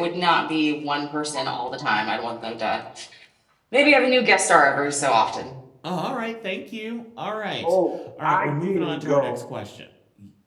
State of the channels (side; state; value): both; identical; correlation 1.00